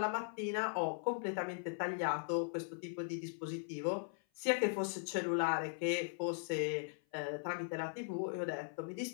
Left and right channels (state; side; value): silent; right; 52 dB below the other